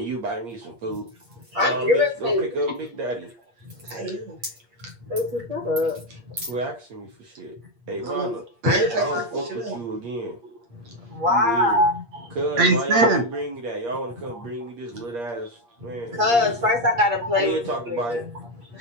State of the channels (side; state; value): left; late; 8.5 ms